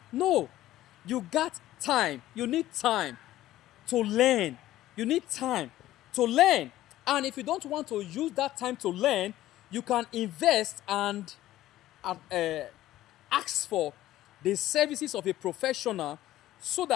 No, you got time. You need time to learn. You need time to learn. And if you don't want to use that time to learn, you can invest and ask for the services of a professional so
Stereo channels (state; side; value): quieter; right; 14.6 dB